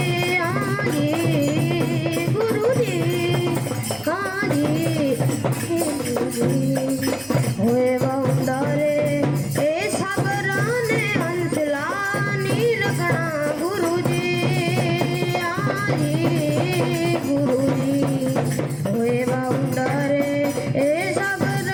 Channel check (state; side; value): noise; right; hum, 26 dB below the sound